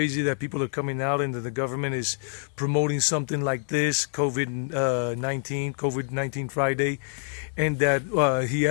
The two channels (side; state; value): right; silent; digital silence